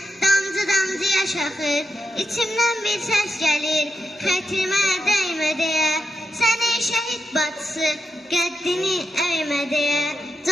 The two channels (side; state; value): both; normal; correlation 0.86